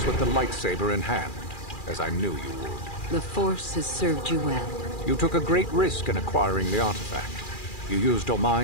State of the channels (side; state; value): right; late; 2.4 ms